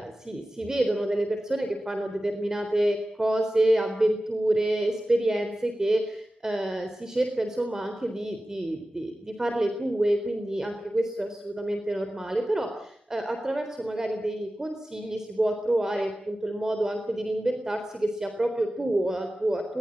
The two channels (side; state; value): both; normal; correlation 0.95